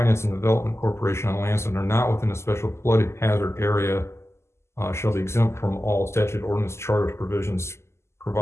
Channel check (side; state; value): right; late; 0.13 ms